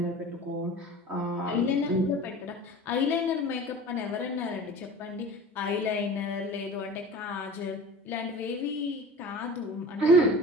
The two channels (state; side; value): normal; both; correlation 0.38